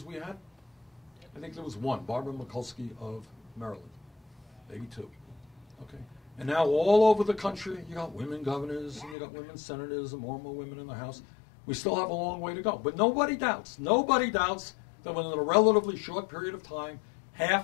we had? I think there was 1, Barbara Mikulski of Maryland, maybe 2. Okay, and now all over the country, you got women governors, and you got women senators, and more women in the House. We still have a long way to go, but nobody doubts that within a relatively short period of time,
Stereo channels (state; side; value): drops out; right; at 9.2 s